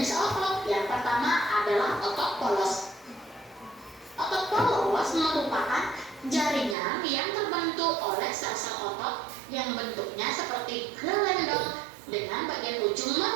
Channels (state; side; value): drops out; left; at 6.8 s